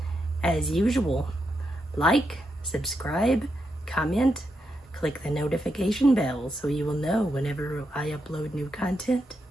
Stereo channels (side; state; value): both; normal; correlation 0.83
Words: As usual, like, subscribe, comment, click the notification bell so you will know whenever I upload new content.